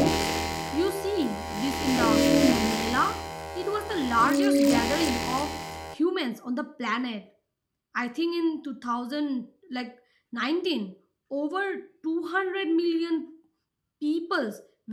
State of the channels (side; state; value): both; identical; correlation 1.00